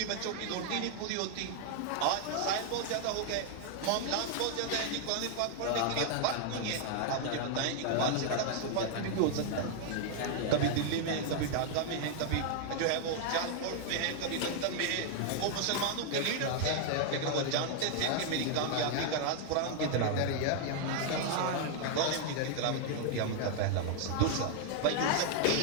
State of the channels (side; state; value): both; different; correlation 0.00